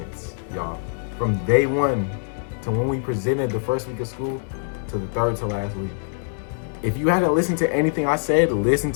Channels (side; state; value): right; silent; 58 dB below the other